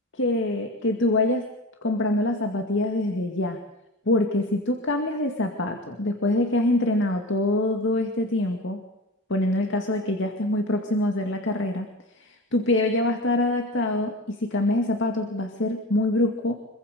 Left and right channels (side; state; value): both; normal; correlation 0.32